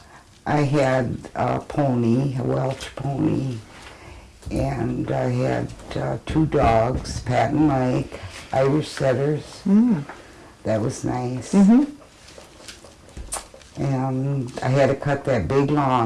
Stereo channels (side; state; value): both; identical; correlation 1.00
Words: I had a pony, a Welsh pony, and I had 2 dogs, Pat and Mike, Irish setters. Mm. That was nice. Mm-hmm. And I had to cut that big